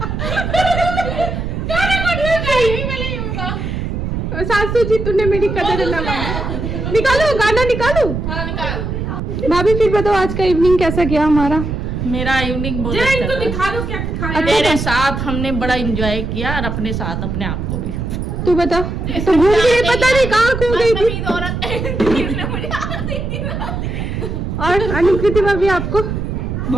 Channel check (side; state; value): right; noise; rumble, 3 dB below the sound